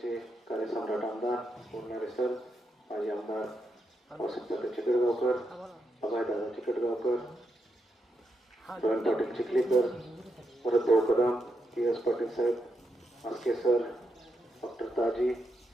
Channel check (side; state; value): both; normal; correlation 0.83